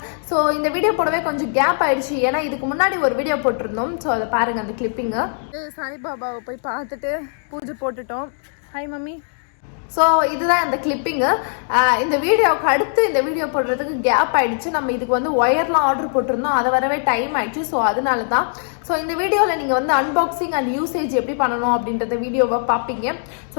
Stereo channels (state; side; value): silent; right; digital silence